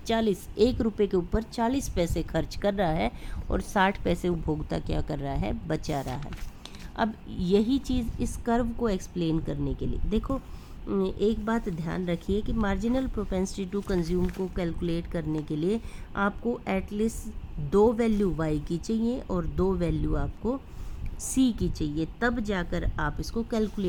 1 रुपये के ऊपर 40 पैसे खर्च कर रहा है और 60 पैसे उपभोक्ता क्या कर रहा है? बचा रहा है। अब यही चीज़ इस कर्व को एक्सप्लेन करने के लिए देखो, एक बात ध्यान रखिए कि मार्जिनल प्रोपेंसिटी टू कंज्यूम को कैलकुलेट करने के लिए आपको एटलीस्ट 2 वैल्यू y की चाहिए और 2 वैल्यू आपको c की चाहिए, तब जाकर आप इसको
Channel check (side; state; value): both; identical; correlation 1.00